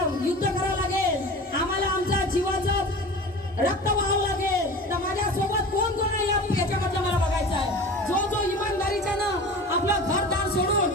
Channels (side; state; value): both; normal; correlation 0.36